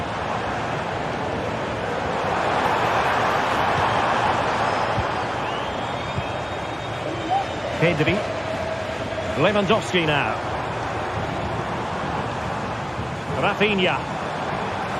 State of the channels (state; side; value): identical; both; correlation 1.00